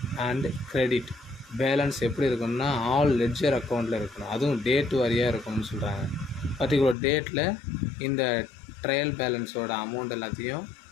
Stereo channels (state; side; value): drops out; right; at 7.0 s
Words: அண்ட் கிரெடிட் பேலன்ஸ் எப்படி இருக்கணும்னா ஆல் லெட்ஜர் அக்கௌண்ட்டில் இருக்கணும். அதுவும் டேட் வாரியாக இருக்கணும்னு சொல்கிறாங்க. பர்டிகுலர் டேட்டில் இந்த ட்ரையல் பேலன்ஸோட அமௌண்ட் எல்லாத்தையும்